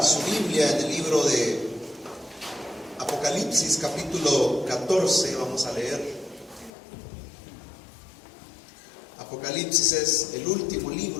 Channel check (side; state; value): right; drops out; at 6.7 s